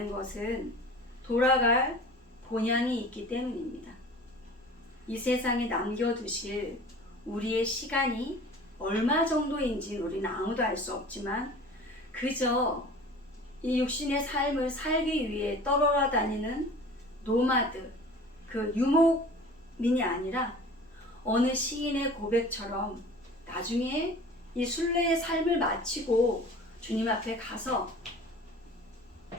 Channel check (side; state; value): both; normal; correlation 0.43